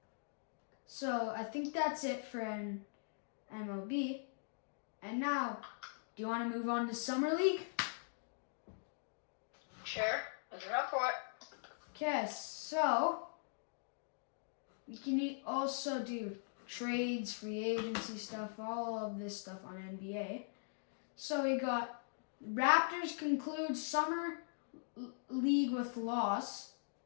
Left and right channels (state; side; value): silent; right; digital silence